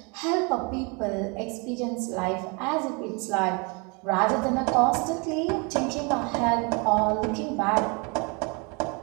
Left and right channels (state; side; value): quieter; left; 31.6 dB